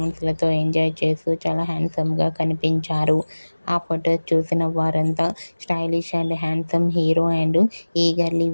ఎంజాయ్ చేస్తూ చాలా హ్యాండ్సమ్గా కనిపించారు. ఆ ఫొటోస్ చూసిన వారంతా stylish and handsome hero and eagerly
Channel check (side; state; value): both; inverted; correlation -1.00